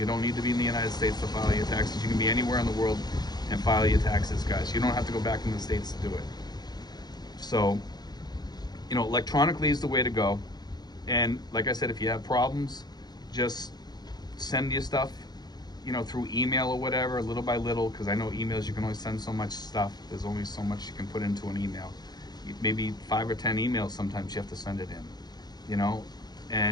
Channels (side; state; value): right; late; 0.20 ms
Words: don't need to be in the United States to file your taxes. You can be anywhere in the world and file your taxes, guys. You don't have to go back in the States to do it. So, electronically is the way to go. And like I said, if you have problems, just send your stuff, through email or whatever, little by little, because I know emails, you can only send so much stuff. There's only so much you can put into an email. Maybe 5 or 10 emails sometimes you have to send it in,